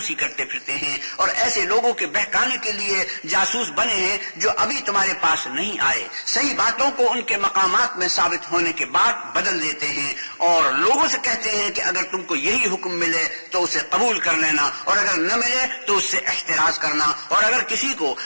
کرتے پھرتے ہیں اور ایسے لوگوں کے بہکانے کے لیے جاسوس بنے ہیں جو ابھی تمہارے پاس نہیں آئے صحیح باتوں کو ان کے مقامات میں ثابت ہونے کے بعد بدل دیتے ہیں اور لوگوں سے کہتے ہیں کہ اگر تم کو یہی حکم ملے تو اسے قبول کر لینا اور اگر نہ ملے تو اس سے احتراز کرنا اور اگر کسی کو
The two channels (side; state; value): both; inverted; correlation -1.00